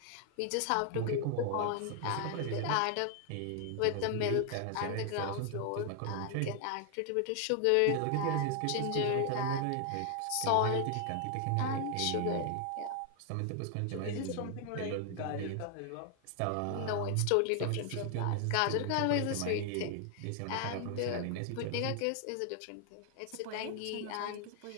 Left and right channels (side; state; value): both; different; correlation 0.00